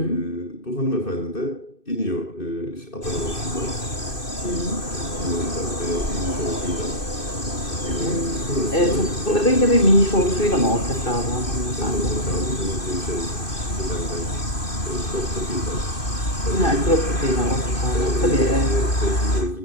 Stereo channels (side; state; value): right; late; 2.6 ms